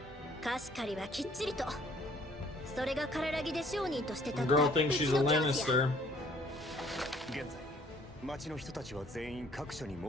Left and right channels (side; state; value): both; normal; correlation 0.59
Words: 貸し借りはきっちりと。それが体木で商人として立 The った girl う thinks ち she's の a 教師や。 Lannister. 現在町の人たちは全員各所に設